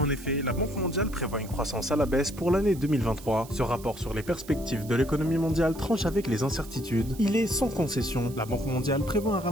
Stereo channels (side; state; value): right; noise; hiss, 19 dB below the sound